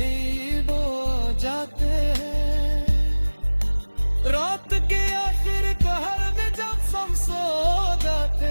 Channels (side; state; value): both; inverted; correlation -1.00